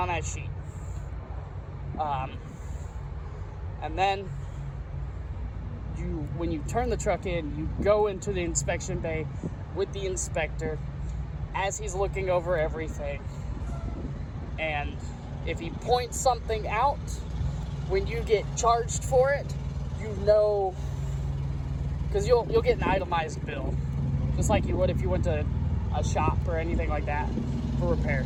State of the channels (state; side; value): identical; both; correlation 1.00